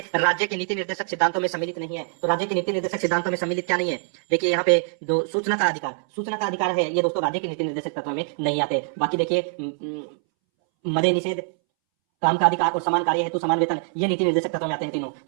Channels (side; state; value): left; silent; 63 dB below the other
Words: राज्य के नीति निर्देशक सिद्धांतों में सम्मिलित नहीं है। तो राज्य के नीति निर्देशक सिद्धांतों में सम्मिलित क्या नहीं है? देखिए यहाँ पे जो सूचना का अधिकार है, ये दोस्तों राज्य के नीति निर्देशक तत्व में नहीं आते। बाकी देखिए मदे निषेध, काम का अधिकार और समान कार्य हेतु समान वेतन, ये नीति निर्देशक तत्व में आते हैं तीनों।